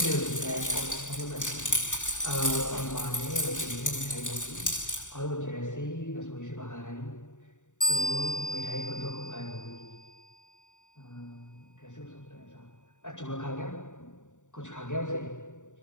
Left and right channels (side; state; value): right; late; 0.86 ms